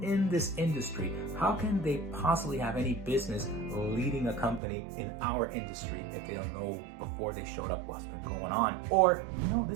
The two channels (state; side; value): drops out; left; at 4.6 s